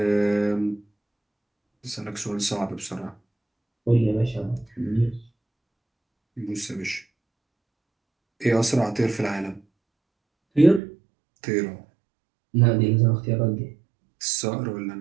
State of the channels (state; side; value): drops out; left; at 10.8 s